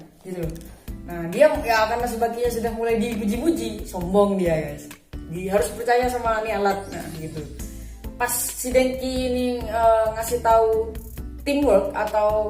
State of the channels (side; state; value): both; identical; correlation 1.00